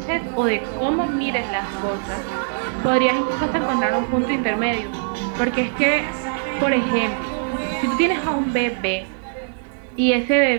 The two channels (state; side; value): silent; left; digital silence